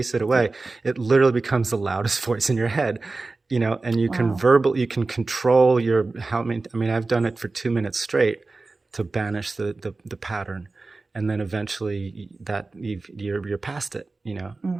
it away, it literally becomes the loudest voice in your head, and you can you can control I've done it for 2 minutes straight to banish the pattern. And then eventually you're past it,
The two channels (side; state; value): left; quieter; 3.6 dB